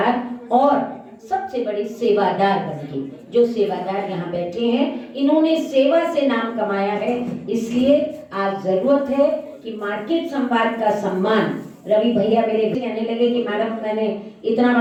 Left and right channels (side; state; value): both; identical; correlation 1.00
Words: और सबसे बड़ी सेवादार बनके। जो सेवादार यहाँ बैठे हैं, इन्होंने सेवा से नाम कमाया है, इसलिए आज जरूरत है कि मार्केट संवाद का सम्मान। रवि भैया मेरे कहने लगे कि मैडम मैंने इतना